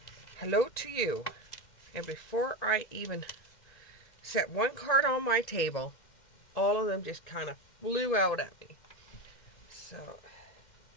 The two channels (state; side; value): late; right; 1.9 ms